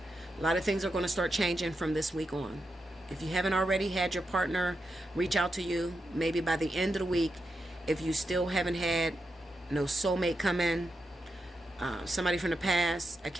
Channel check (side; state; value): both; normal; correlation 0.86